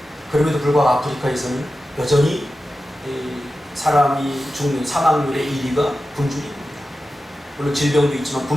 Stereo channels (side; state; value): both; normal; correlation 0.92